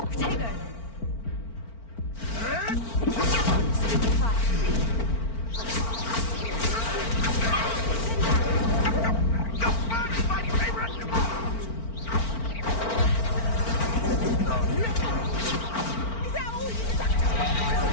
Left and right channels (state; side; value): late; right; 4.4 ms